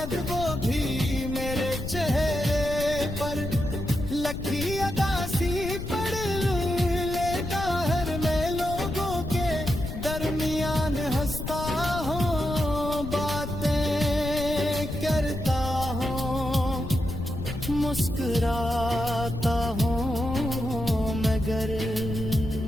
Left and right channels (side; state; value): left; noise; rumble, 6 dB below the sound